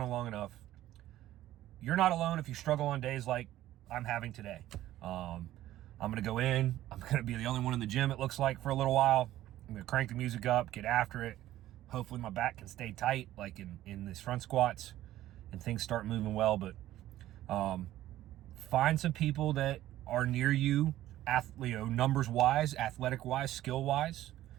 long enough. You're not alone if you struggle on days like I'm having today. I'm going to go in. I'm going to be the only one in the gym, it looks like, for a little while. I'm going to crank the music up, get after it. Hopefully my back can stay tight, like in these front squats, and things start moving well. But find some people that are near you, numbers-wise, athletic-wise, skill-wise.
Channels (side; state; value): left; quieter; 14.2 dB